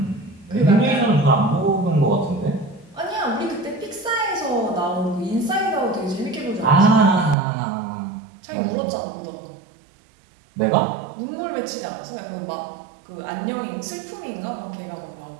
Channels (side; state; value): left; drops out; at 7.4 s